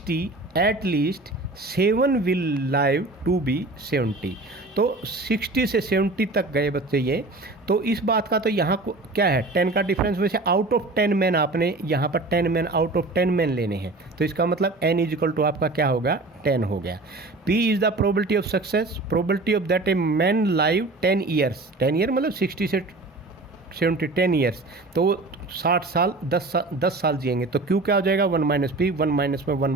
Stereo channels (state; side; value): quieter; left; 3.1 dB